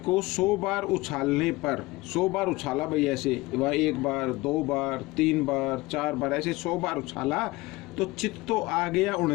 100 बार उछालने पर, 100 बार उछाला भाई, ऐसे वह 1 बार 2 बार 3 बार 4 बार ऐसे 100 बार उछाला तो चित तो आ गया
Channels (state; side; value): quieter; right; 21.1 dB